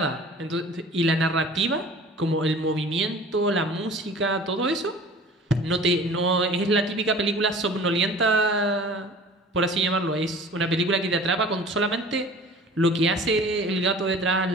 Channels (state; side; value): normal; both; correlation 0.44